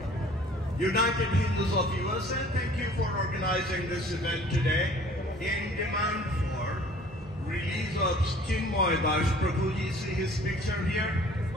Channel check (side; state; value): both; normal; correlation 0.51